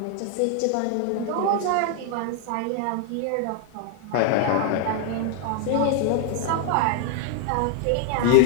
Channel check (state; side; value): different; both; correlation 0.00